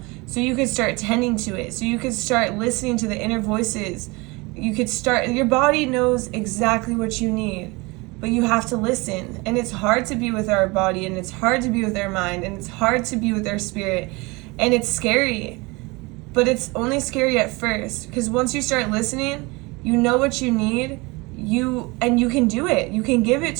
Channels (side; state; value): left; quieter; 25.2 dB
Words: so you could start tending to it, so you could start listening to the inner voices. You could start, your body knows exactly what you need, but you have to listen. And it's hard to be with our body, and it's hard to be with our mind, and it's hard to be with our spirit, and it's scary. But it's only scary at first, because once you start listening, you know what you need. You can do it. You can give it